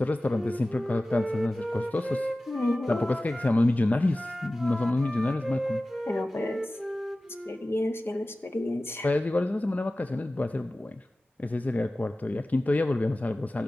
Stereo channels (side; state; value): both; normal; correlation 0.97